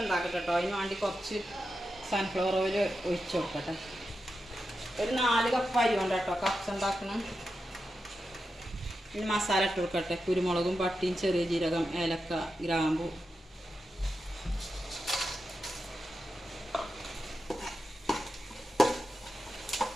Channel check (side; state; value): both; normal; correlation 0.89